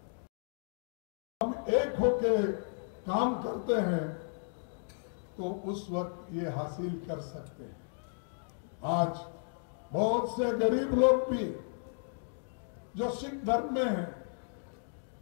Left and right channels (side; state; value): right; silent; digital silence